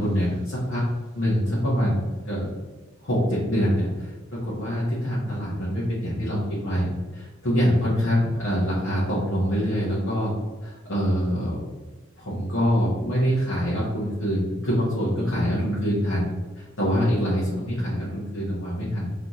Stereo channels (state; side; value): normal; both; correlation 0.77